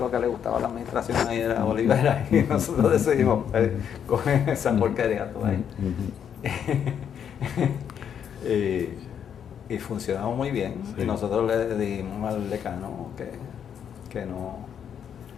que le gustaba la administración ahí era Olivera. Y nosotros decidimos, coge esa porquería tú ahí. Y funcionaba muy bien. Y nosotros le dijimos al decano que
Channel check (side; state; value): right; quieter; 8.4 dB